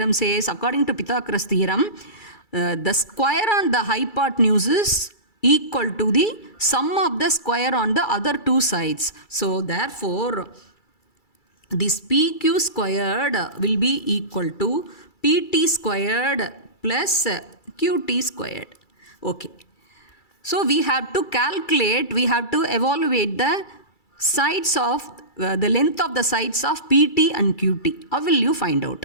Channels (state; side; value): late; right; 2.3 ms